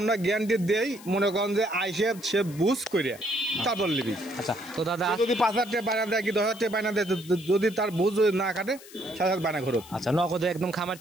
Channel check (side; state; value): left; noise; hiss, 19 dB below the sound